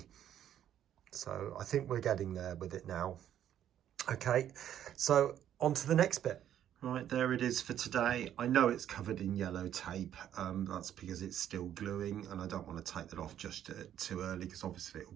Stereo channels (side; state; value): left; quieter; 10.6 dB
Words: So I think we're getting there with it now. Okay, so on to the next bit. Right, there it is for today. I know it's covered in yellow tape. That's because it's still gluing, and I don't want to take that off just too early because obviously